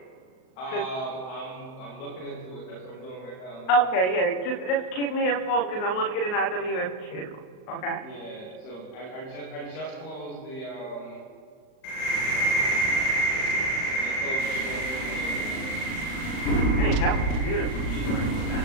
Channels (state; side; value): late; right; 38 ms